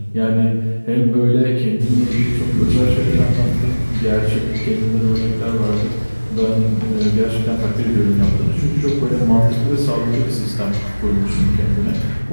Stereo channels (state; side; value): inverted; both; correlation -1.00